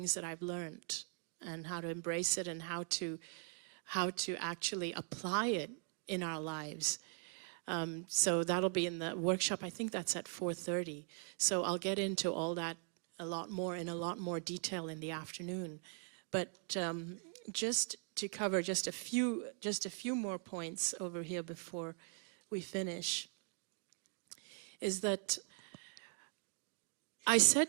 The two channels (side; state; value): left; silent; 51 dB below the other